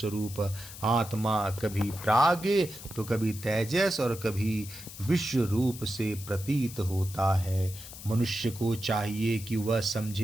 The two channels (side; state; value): left; noise; hiss, 14 dB below the sound